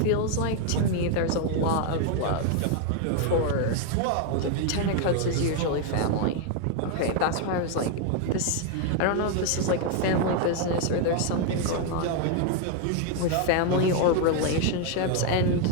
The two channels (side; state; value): both; different; correlation 0.01